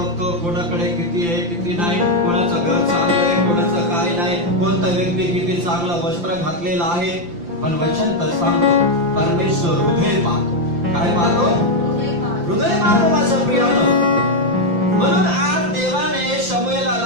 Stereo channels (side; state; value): left; late; 5.8 ms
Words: कोणाकडे किती आहे किती नाही, कोणाचं घर चांगलं आहे, कोणाचं काय नाही, कोणता व्यक्ती किती चांगलं वस्त्र घातलेलं आहे। पण वचन तर सांगतो परमेश्वर हृदय पाहतो। काय पाहतो? हृदय पाहतो माझं प्रियानो। म्हणून आज देवाने